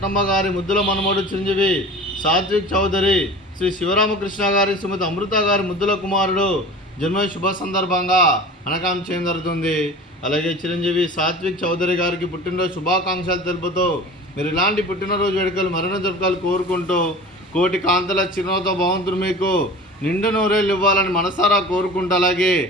గారి ముద్దుల మనమడు చిరంజీవి సాత్విక్ చౌదరి, శ్రీ శివరామకృష్ణ గారి, శ్రీమతి అమృత గారి ముద్దుల కుమారుడు జన్మ శుభ సందర్భంగా అనకాం చేయడం జరుగుతుంది. అలాగే చిరంజీవి సాత్విక్ చౌదరి గారికి పుట్టినరోజు శుభాకాంక్షలు తెలుపుతూ మీరు ఇలాంటి పుట్టినరోజు వేడుకలు మరణ జరుపుకోవాలి కోరుకుంటూ కోటి కాంతల చిరునవ్వుతో భగవంతుడు మీకు నిండు నూరేళ్ళు ఇవ్వాలని మనసారా కోరుకుంటూ అలాగే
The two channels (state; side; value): normal; both; correlation 0.38